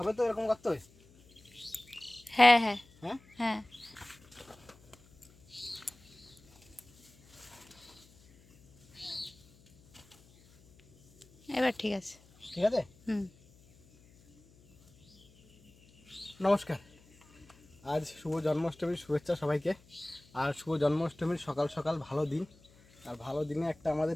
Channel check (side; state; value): left; noise; hum, 27 dB below the sound